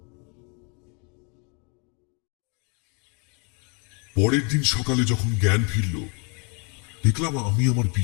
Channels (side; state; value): right; quieter; 35.2 dB